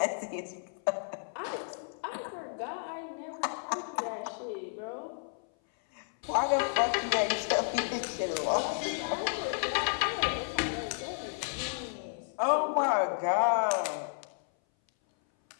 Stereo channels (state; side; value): silent; right; 56 dB below the other